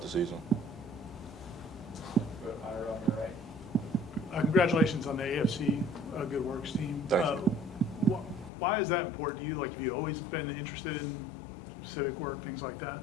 the season. Congratulations on the AFC Good Works team. Thank you. Why is that important to you? Like, have you always been interested in civic work, things like that?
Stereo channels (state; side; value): drops out; right; at 8.5 s